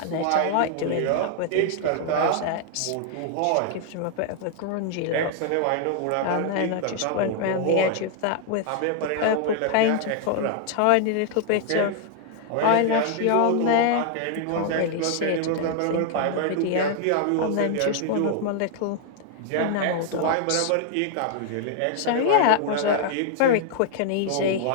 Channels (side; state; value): both; different; correlation 0.00